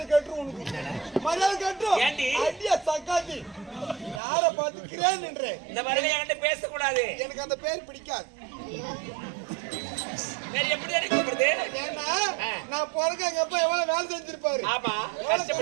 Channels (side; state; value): left; drops out; at 4.2 s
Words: கட்டுரும் உனக்கு. மரியாதை கட்டுரும். அடியா சக்காத்தி யார பார்த்து கிரேன் என்ற இந்த மாதிரி என்கிட்ட பேசக்கூடாது. எனக்கு அந்த பேர் பிடிக்காது. எப்படி அடிக்கப்படுது? ஏன்னா நான் பிறகு எங்க அப்பா எவ்வளவு வேலை செஞ்சிருப்பாரு. ஆமா